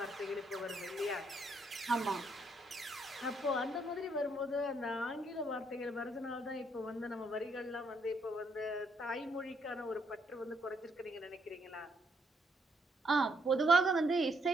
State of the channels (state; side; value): normal; both; correlation 0.73